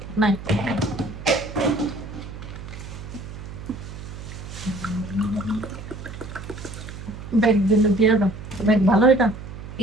নাই ব্যাগ দিলে দিয়ে দাও। ব্যাগ ভালো এটা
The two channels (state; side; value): noise; right; hum, 12 dB below the sound